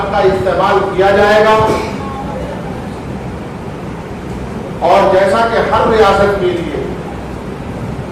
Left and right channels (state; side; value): identical; both; correlation 1.00